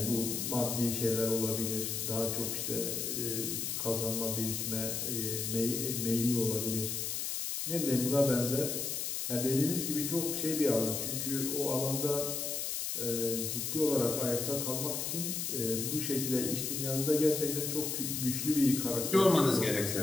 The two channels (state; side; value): noise; left; hiss, 2 dB below the sound